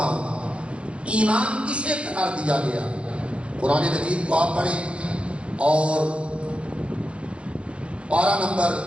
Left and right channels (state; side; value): late; left; 0.059 ms